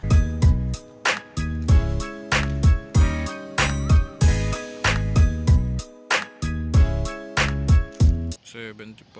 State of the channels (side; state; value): both; identical; correlation 1.00